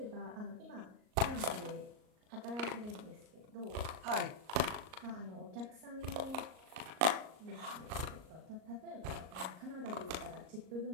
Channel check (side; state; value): left; late; 38 ms